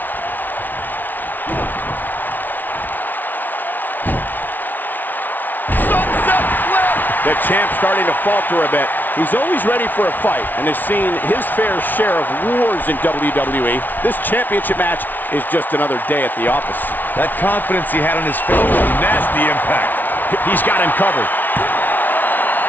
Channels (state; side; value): late; right; 0.085 ms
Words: The champ's starting to falter a bit. He's always ready for a fight and has seen his fair share of wars in WWE. This championship match is just another day at the office. That confidence he had on his face, nasty impact. He's got him covered.